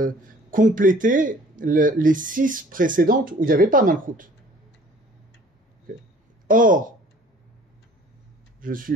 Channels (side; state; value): both; normal; correlation 0.52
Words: compléter les 6 précédentes où il n'y avait pas Malchut. Okay. Or, je suis